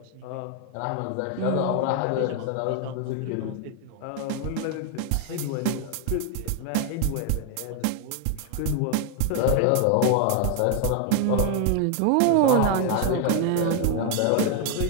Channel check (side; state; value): both; different; correlation 0.00